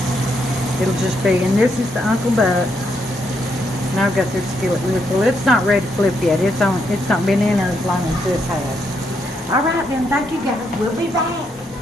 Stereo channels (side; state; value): both; normal; correlation 0.77